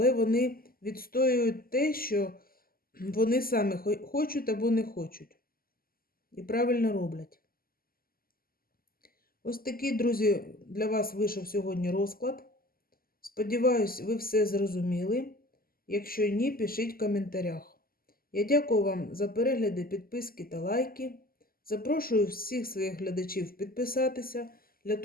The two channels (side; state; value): right; late; 0.42 ms